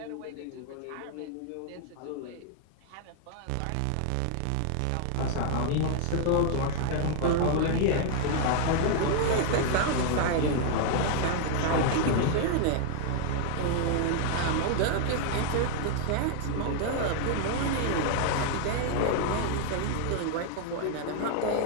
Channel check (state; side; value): different; both; correlation 0.00